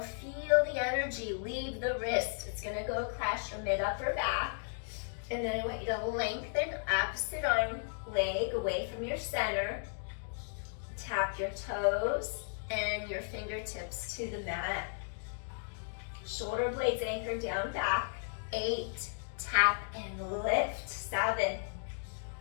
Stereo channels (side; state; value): right; silent; digital silence